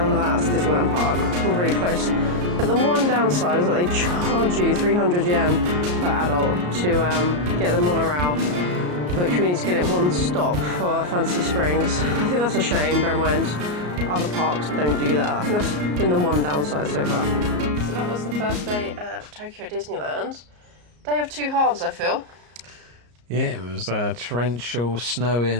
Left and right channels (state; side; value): late; left; 34 ms